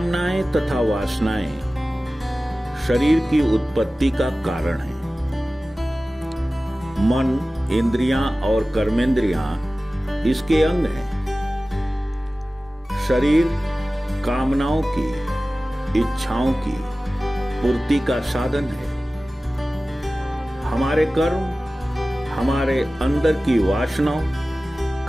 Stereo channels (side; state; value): both; normal; correlation 0.97